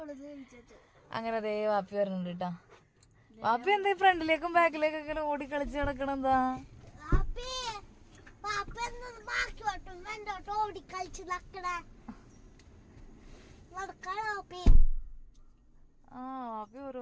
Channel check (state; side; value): identical; both; correlation 1.00